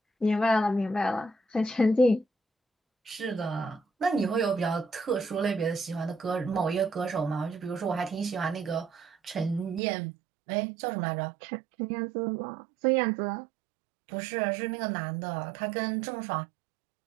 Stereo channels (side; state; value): left; drops out; at 9.8 s